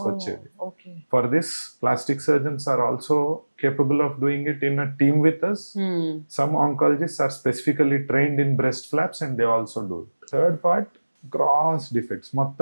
Okay. For this plastic surgeons are also capable of doing it in a team with us. Some oncologists are specifically trained in breast flaps and they also do it. Third part, gross defects.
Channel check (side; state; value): both; inverted; correlation -1.00